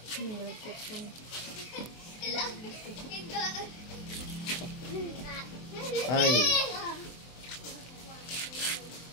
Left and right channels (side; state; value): right; late; 24 ms